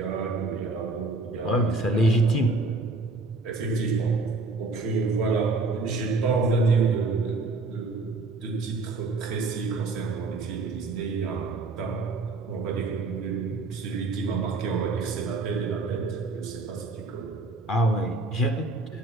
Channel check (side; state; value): left; quieter; 3.4 dB